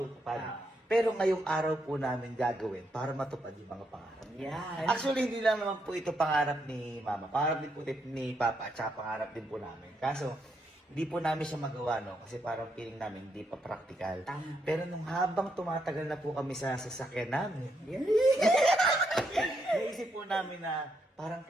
Pero ngayong araw po namin gagawin para matupad yung mga pangarap. Yan. Actually, hindi lang naman po ito pangarap ni Mama. Pangarap din po ni Papa at saka pangarap din po namin. Kaso, hindi po namin siya magawa, no? Kasi parang feeling namin hindi pa practical. Tama. Pero nung habang tumatagal na po kami sa sasakyan namin, Yan. naisip po namin na parang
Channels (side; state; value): both; normal; correlation 0.78